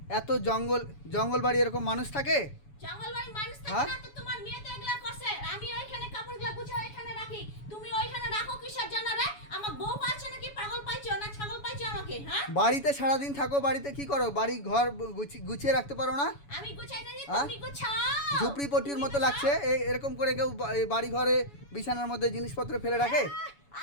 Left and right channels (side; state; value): right; late; 7.1 ms